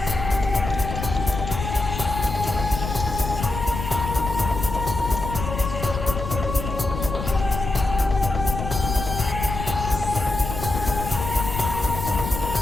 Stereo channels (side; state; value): left; noise; rumble, 6 dB below the sound